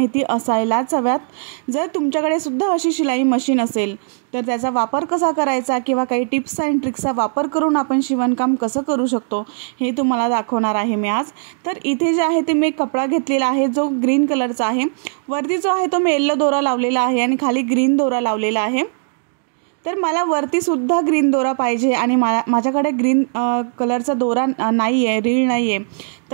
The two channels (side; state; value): left; silent; digital silence